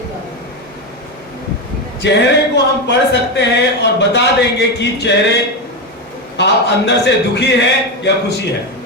चेहरे को हम पढ़ सकते हैं और बता देंगे कि चेहरे आप अंदर से दुखी है या खुशी है,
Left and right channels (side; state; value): both; normal; correlation 0.13